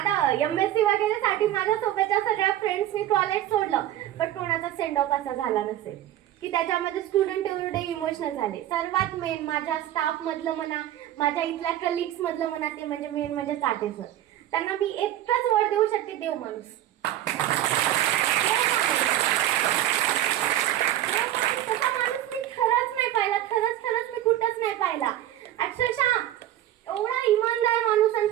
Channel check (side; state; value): left; quieter; 12.9 dB